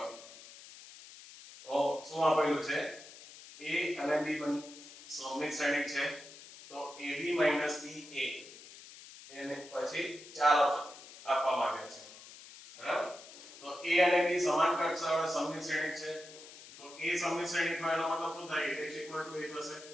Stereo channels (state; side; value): noise; left; hiss, 17 dB below the sound